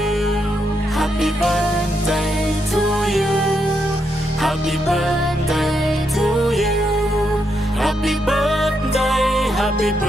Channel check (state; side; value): normal; both; correlation 0.81